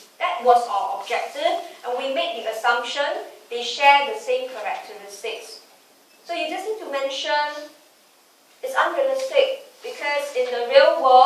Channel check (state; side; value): identical; both; correlation 1.00